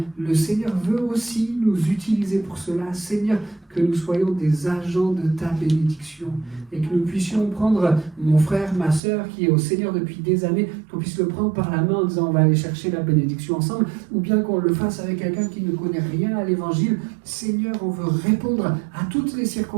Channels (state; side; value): drops out; left; at 9.0 s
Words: le Seigneur veut aussi nous utiliser pour cela. Seigneur, que nous soyons des agents de ta bénédiction et que nous puissions prendre mon frère, ma sœur qui est au Seigneur depuis des années, qu'on puisse le prendre par la main en disant on va aller chercher la bénédiction ensemble, ou bien qu'on le fasse avec quelqu'un qui ne connaît rien à l'évangile. Seigneur, on veut répondre à toutes les